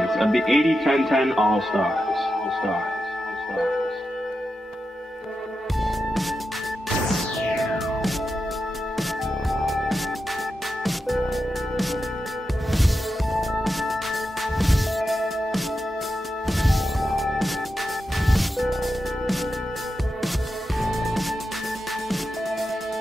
of the 80-10-10 All-Stars. All-Stars. All-Stars.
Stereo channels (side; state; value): both; normal; correlation 0.89